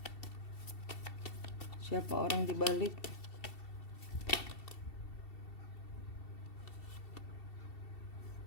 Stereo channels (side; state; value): right; late; 2.7 ms